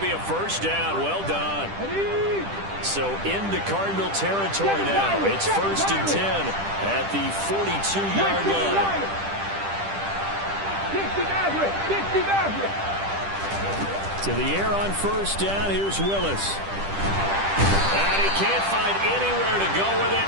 be a first down. Well done. So into Cardinal territory now. It's 1st and 10 at the 42-yard line. To the air on first down. Here's Willis. And he can't find anywhere to go with it,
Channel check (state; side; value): late; left; 10 ms